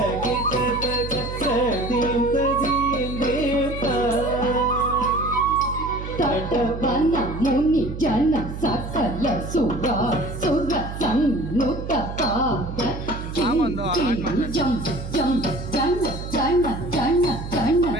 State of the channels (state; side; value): noise; right; hum, 8 dB below the sound